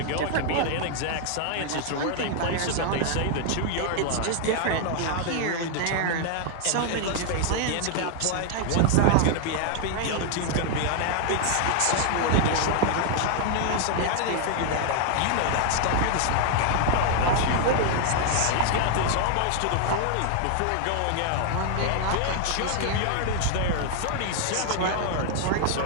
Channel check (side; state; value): both; different; correlation 0.00